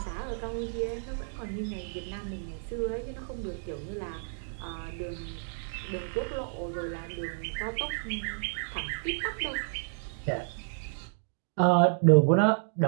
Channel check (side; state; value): left; silent; digital silence